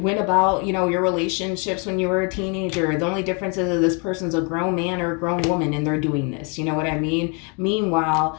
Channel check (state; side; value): quieter; right; 34.8 dB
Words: about, you know, your relationships when you were a teenager. The only difference is that this person's a grown man or a grown woman and they're doing this. You know what I mean? Meanwhile,